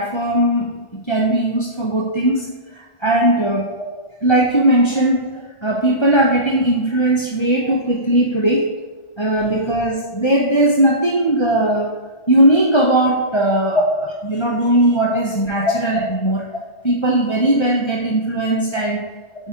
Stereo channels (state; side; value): late; right; 1.3 ms